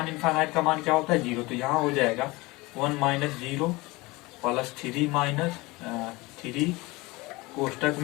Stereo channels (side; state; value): right; quieter; 22.9 dB